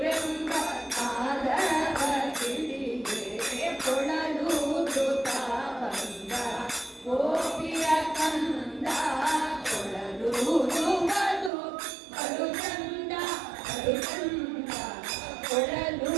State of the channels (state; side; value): drops out; left; at 11.5 s